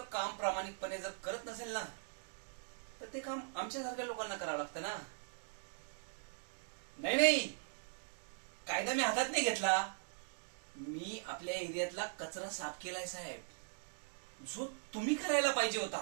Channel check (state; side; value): silent; left; digital silence